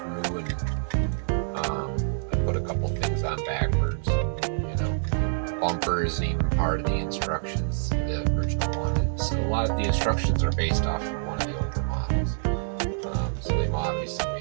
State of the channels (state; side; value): silent; left; digital silence